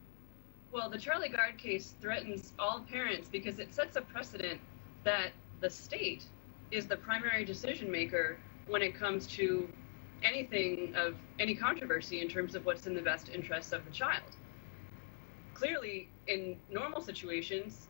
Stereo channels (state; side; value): quieter; right; 36.0 dB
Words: Well, the Charlie Gard case threatens all parents because it sets a precedent that the state is the primary decision maker when it comes to anything of any controversy in terms of what's in the best interests of the child. Clearly, in normal situations,